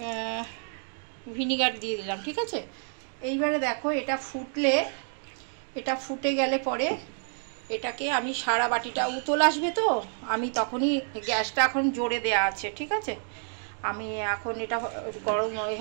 ভিনিগার দিয়ে দিলাম, ঠিক আছে। এইবারে দেখো এটা ফুটে গেলে পরে এটাকে আমি সারা বাটিটা উতল আসবে, তো আমি তখনই গ্যাসটা এখন জোরে দেওয়া আছে, ঠিক আছে। আমি এখন এটা গরম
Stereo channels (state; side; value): silent; left; 55 dB below the other